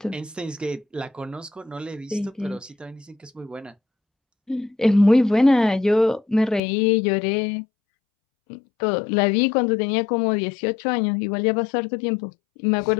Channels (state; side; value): drops out; right; at 6.6 s